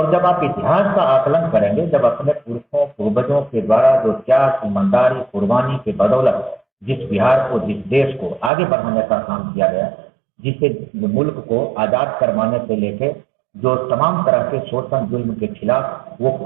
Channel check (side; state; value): left; drops out; at 8.5 s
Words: जब आप इतिहास का आकलन करेंगे, जब अपने पुरखों पूर्वजों के द्वारा जो त्याग, ईमानदारी, कुर्बानी के बदौलत जिस बिहार को, जिस देश को आगे बढ़ाने का काम किया गया, जिसे मुल्क को आजाद करवाने से लेके जो तमाम तरह के शोषण जुल्म के खिलाफ वो